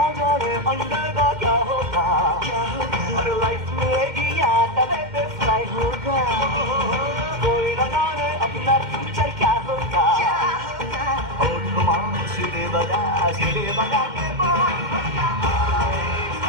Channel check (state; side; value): late; left; 2.1 ms